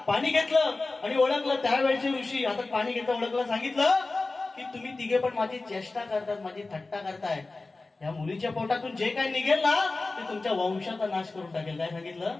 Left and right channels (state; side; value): quieter; right; 3.4 dB